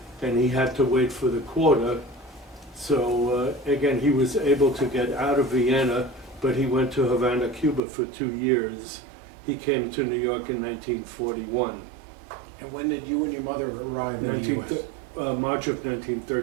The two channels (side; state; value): left; drops out; at 7.8 s